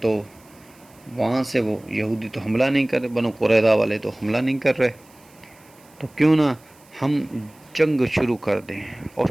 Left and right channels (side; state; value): right; noise; hiss, 29 dB below the sound